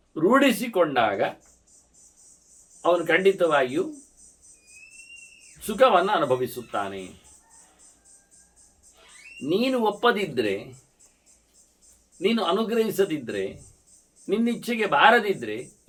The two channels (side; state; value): both; identical; correlation 1.00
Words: ರೂಢಿಸಿಕೊಂಡಾಗ ಅವನು ಖಂಡಿತವಾಗಿಯೂ ಸುಖವನ್ನು ಅನುಭವಿಸುತ್ತಾನೆ. ನೀನು ಒಪ್ಪದಿದ್ದರೆ, ನೀನು ಅನುಗ್ರಹಿಸದಿದ್ದರೆ, ನಿನ್ನಿಚ್ಛೆಗೆ ಬಾರದಿದ್ದರೆ